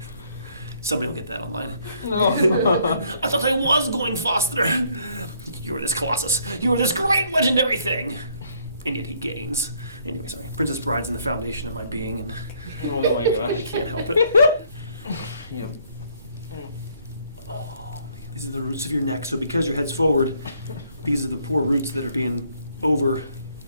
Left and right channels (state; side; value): inverted; both; correlation -0.66